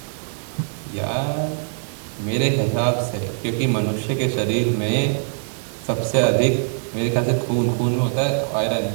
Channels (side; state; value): left; silent; 64 dB below the other